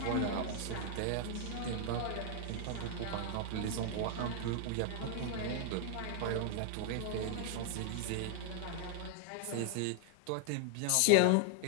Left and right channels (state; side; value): different; both; correlation 0.00